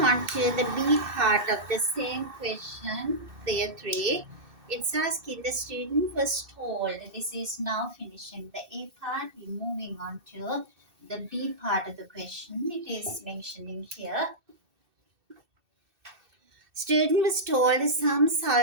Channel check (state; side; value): late; left; 2.6 ms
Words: to the B part of the same question, there 3. It's asking the student was told, this is now finishing the A part, we're moving on to the B part of the question. It is mentioning here Student was told some